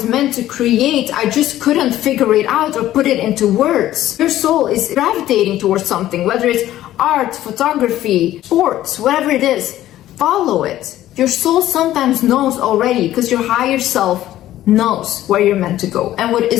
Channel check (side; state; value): right; quieter; 13.7 dB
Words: meant to create. I just couldn't figure it out or put it into words. Your soul is gravitating towards something, whether it's art, photography, sports, whatever it is, follow it. Your soul sometimes knows already because your higher self knows where you're meant to go and what